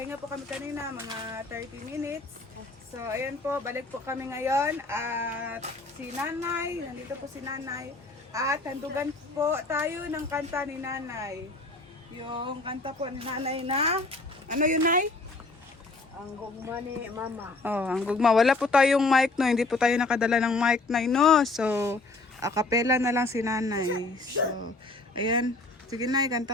po kami kanina mga 30 minutes. So ayan po, balik po kami ngayon at si Nanay, nandito po si Nanay. At handugan po tayo ng kanta ni Nanay. Yung kanta po ni Nanay na, ano yun Nay? Ang gugma ni Mama. Oh, ang gugma. Wala po tayong mic no, hindi po tayo nakadala ng mic Nay no. So, a cappella na lang si Nanay. So, ayan. Sige Nay,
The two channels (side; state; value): right; quieter; 3.3 dB